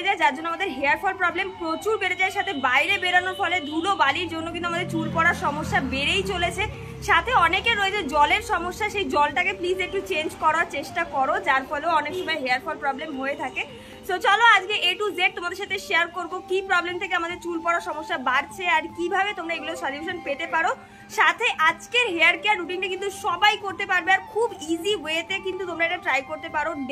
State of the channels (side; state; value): both; identical; correlation 1.00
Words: যায়, যার জন্য আমাদের হেয়ার ফল প্রবলেম প্রচুর বেড়ে যায়। সাথে বাইরে বেরানোর ফলে ধুলো বালির জন্য কিন্তু আমাদের চুল পড়ার সমস্যা বেড়েই চলেছে। সাথে অনেকের রয়েছে জলের সমস্যা, সেই জলটাকে প্লিজ একটু চেঞ্জ করার চেষ্টা করো, যার ফলেও অনেক সময় হেয়ার ফল প্রবলেম হয়ে থাকে। সো চলো আজকে A to Z তোমাদের সাথে শেয়ার করবো কি প্রবলেম থেকে আমাদের চুল পড়ার সমস্যা বাড়ছে আর কিভাবে তোমরা এগুলো সলিউশন পেতে পারো। সাথে আজকের হেয়ার কেয়ার রুটিনটা কিন্তু সবাই করতে পারবে আর খুব ইজি ওয়েতে কিন্তু তোমরা এটা ট্রাই করতে পারো,